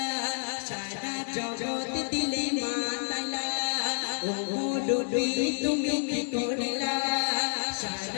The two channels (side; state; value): right; silent; digital silence